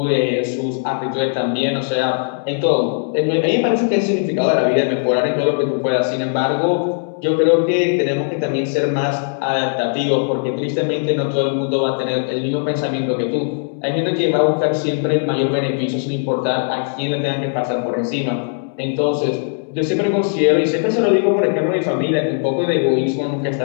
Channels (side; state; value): right; silent; 67 dB below the other